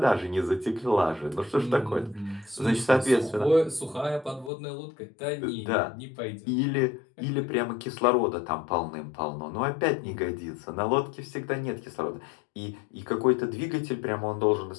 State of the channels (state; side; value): drops out; right; at 4.5 s